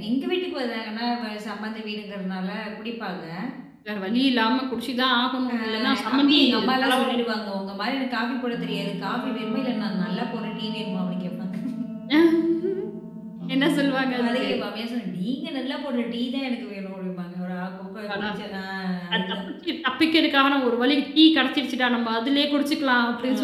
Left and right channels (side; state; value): both; identical; correlation 1.00